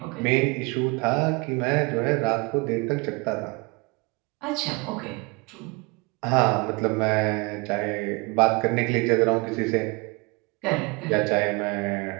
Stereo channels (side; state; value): left; quieter; 28.2 dB